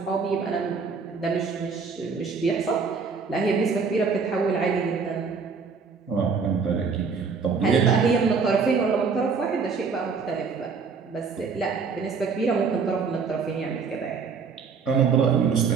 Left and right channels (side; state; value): left; quieter; 5.3 dB